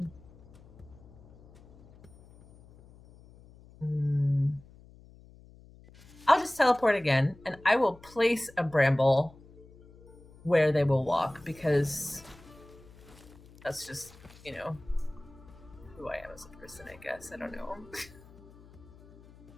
just teleport again, and I will place a bramble where they will walk, because that's just, you know, who I am as a person, I guess. I don't know.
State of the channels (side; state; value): left; noise; hum, 23 dB below the sound